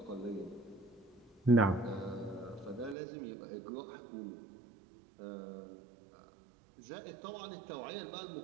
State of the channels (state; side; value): drops out; left; at 3.0 s